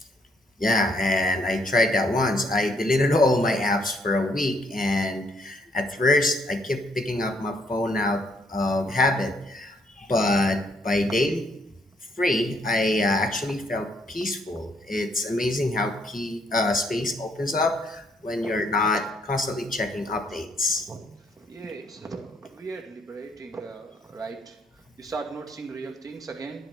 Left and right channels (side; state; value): both; normal; correlation 0.70